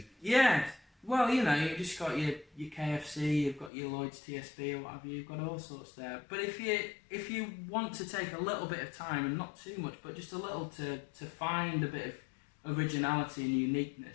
Yeah. Well, you know, you've just got your KFC, you've got your Lloyd's TSB or whatever, you've got all sorts there. But if you want to take a little bit of time, and not too much, but just a little to find a bit of originality and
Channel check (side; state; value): right; drops out; at 3.7 s